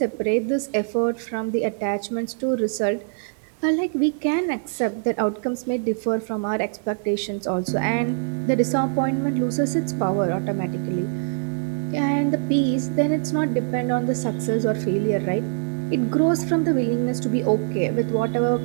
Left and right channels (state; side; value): silent; left; 63 dB below the other